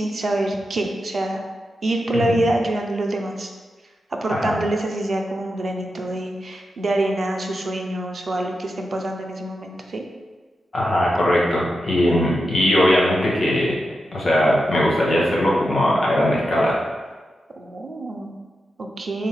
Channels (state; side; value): normal; both; correlation 0.88